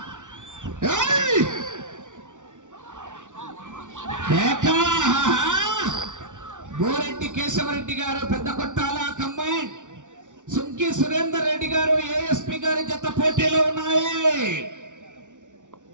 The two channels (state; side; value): late; left; 0.86 ms